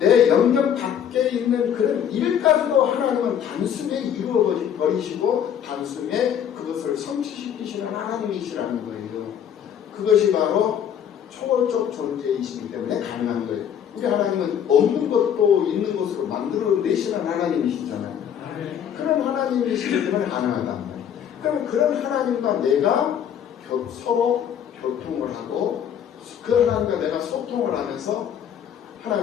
영역 밖에 있는 그런 일까지도 하나님은 단숨에 이루어 버리시고 단숨에 그것을 성취시키시는 하나님이시라는 거예요. 그것이 바로 초월적 존재이시기 때문에 가능한 거예요. 우리 하나님은 없는 것도 있는 것으로 만들어내시는 하나님이시잖아요. 그런 하나님이시기 때문에 가능하단 말이에요. 그럼 그런 하나님과 내가 서로 교통을 하고 그 하나님과 내가 소통을 하면서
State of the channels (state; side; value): quieter; right; 9.0 dB